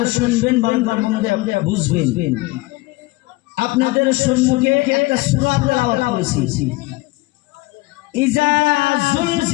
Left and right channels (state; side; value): quieter; right; 21.6 dB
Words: শুনবেন, ভালো করে মন দিয়ে বুঝবেন। আপনাদের সম্মুখে একটা সূরা তেলাওয়াত করেছি, ইজা